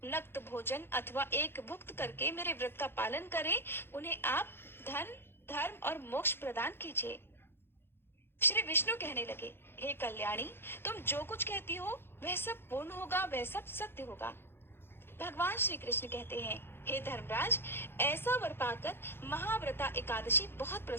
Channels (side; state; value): right; late; 0.11 ms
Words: नक्त भोजन अथवा एक भुक्त करके मेरे व्रत का पालन करें, उन्हें आप धन, धर्म और मोक्ष प्रदान कीजिए। श्री विष्णु कहने लगे, हे कल्याणी, तुम जो कुछ कहती हो वह सब पूर्ण होगा, वह सब सत्य होगा। भगवान श्री कृष्ण कहते हैं, हे धर्मराज, ऐसा वर पाकर महाव्रता एकादशी बहुत